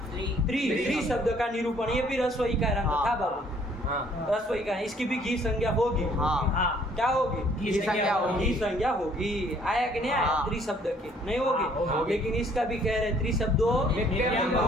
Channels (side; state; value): both; normal; correlation 0.61